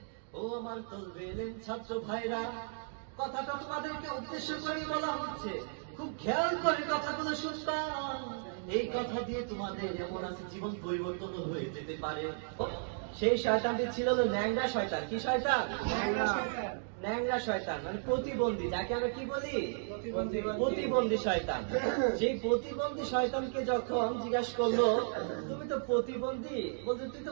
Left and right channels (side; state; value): left; silent; digital silence